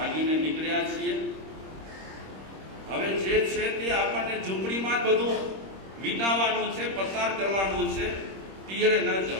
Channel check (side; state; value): left; late; 26 ms